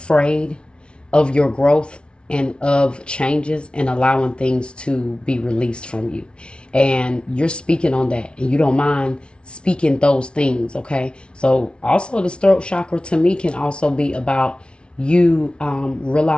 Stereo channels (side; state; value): right; late; 0.057 ms